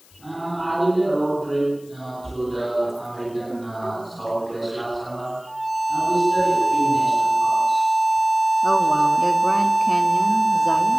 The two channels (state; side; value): noise; left; hiss, 28 dB below the sound